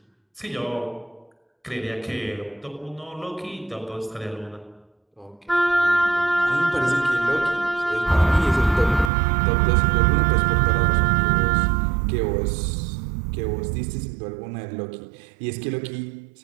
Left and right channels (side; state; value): left; drops out; at 9.1 s